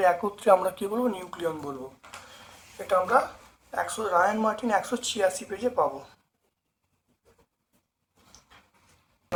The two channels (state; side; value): identical; both; correlation 1.00